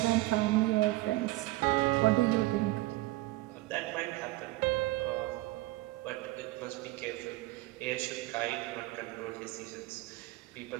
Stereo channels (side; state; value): left; quieter; 19.3 dB